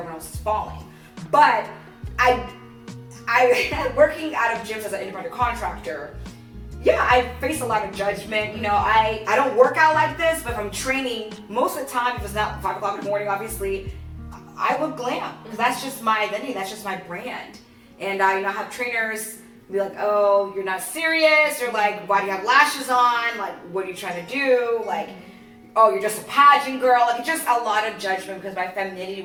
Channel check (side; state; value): both; identical; correlation 1.00